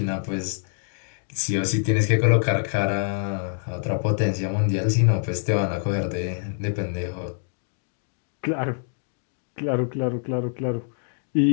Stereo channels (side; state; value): right; silent; digital silence